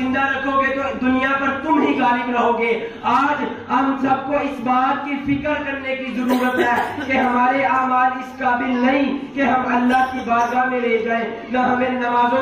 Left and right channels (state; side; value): identical; both; correlation 1.00